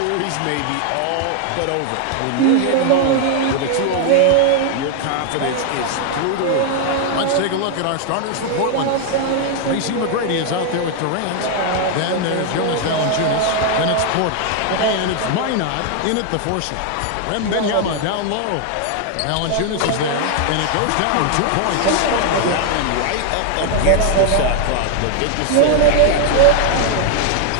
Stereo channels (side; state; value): both; different; correlation 0.00